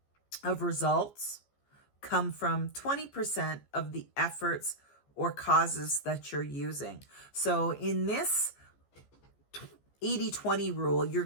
of results come from 20% of the efforts or causes that you're using. So in this 80-20 rule, you're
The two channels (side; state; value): right; late; 14 ms